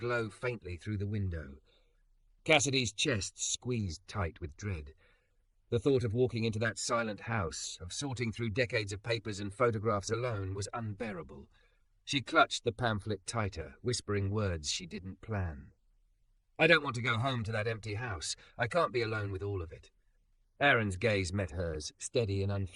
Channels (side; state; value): both; identical; correlation 1.00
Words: faintly through the window. Cassidy's chest squeezed tight with dread. The thought of walking into that silent house, of sorting through decades of papers and photographs alone, was unbearable. She clutched the pamphlet tighter, whispering words she didn't plan. "I don't want to go home to that empty house. I can't be alone with all of it." Aaron's gaze met hers, steady and